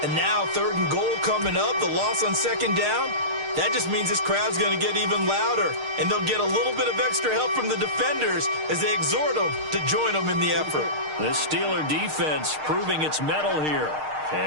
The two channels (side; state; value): left; late; 6.5 ms